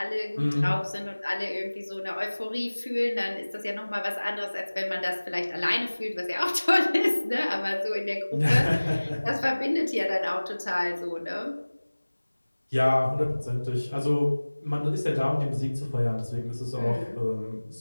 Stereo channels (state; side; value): inverted; both; correlation -1.00